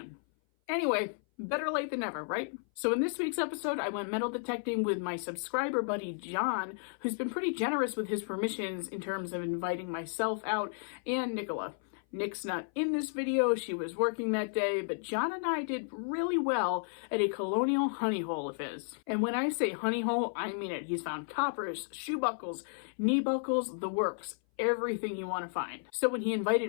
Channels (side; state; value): right; silent; 56 dB below the other